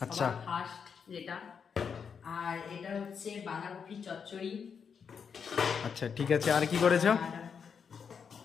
আচ্ছা। সবার ফার্স্ট যেটা। আর এটা হচ্ছে বাঁধাকপি চচ্চড়ি। আচ্ছা ঠিক আছে, আর কি করেছো? আর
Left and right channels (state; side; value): quieter; right; 6.6 dB